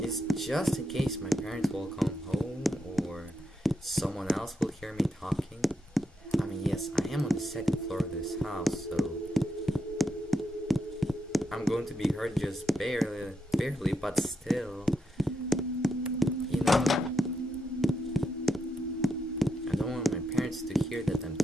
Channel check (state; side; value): normal; both; correlation 0.82